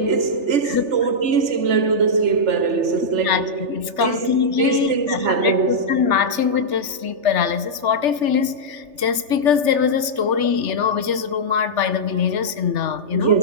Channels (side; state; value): left; late; 3.3 ms